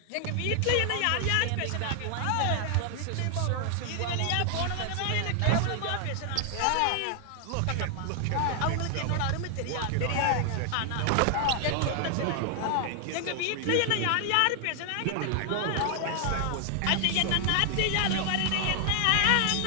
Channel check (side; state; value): both; different; correlation 0.00